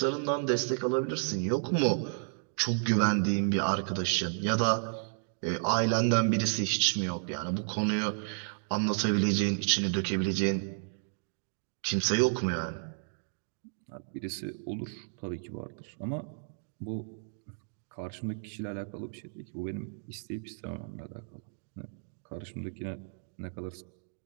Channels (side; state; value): left; silent; digital silence